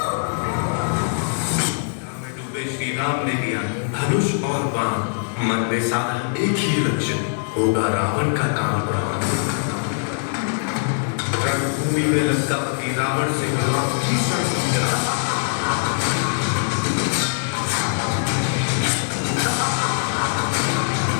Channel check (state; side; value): silent; right; digital silence